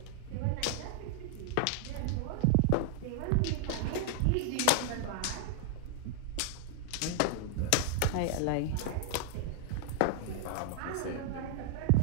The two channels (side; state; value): both; different; correlation 0.00